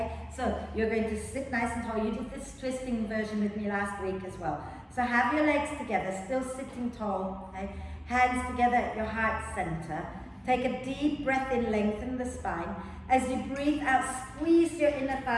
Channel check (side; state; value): both; identical; correlation 1.00